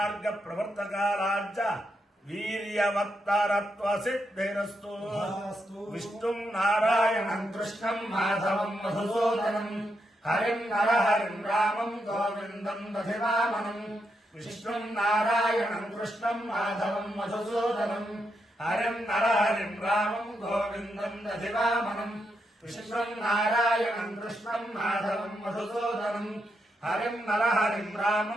ప్రవర్తకారాజ్య వీర్యవత్తరత్వ సిద్ధిరస్తు విష్ణుం నారాయణం కృష్ణం మాధవం మధుసూదనం హరిం నరహరిం రామం గోవిందం దధివామనం విష్ణుం నారాయణం కృష్ణం మాధవం మధుసూదనం హరిం నరహరిం రామం గోవిందం దధివామనం విష్ణుం నారాయణం కృష్ణం మాధవం మధుసూదనం హరిం నరహరిం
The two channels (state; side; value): normal; both; correlation 0.82